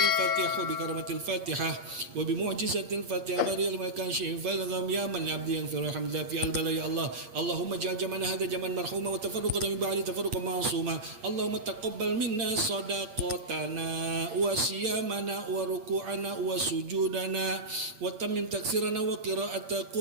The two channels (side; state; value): left; late; 8.6 ms